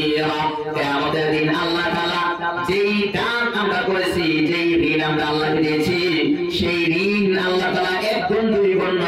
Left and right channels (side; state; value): both; identical; correlation 1.00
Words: কিয়ামতের দিন আল্লাহ তাআলা যেই দান আমরা করেছি, যেই ঋণ আমরা আল্লাহকে দিয়েছি, সেই ঋণ আল্লাহ তাআলা এক গুণ দুই গুণ